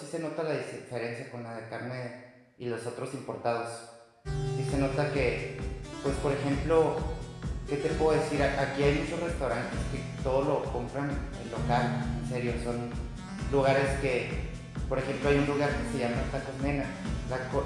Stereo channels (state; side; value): identical; both; correlation 1.00